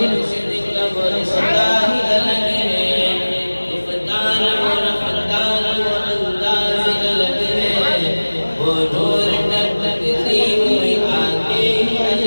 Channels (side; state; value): both; inverted; correlation -1.00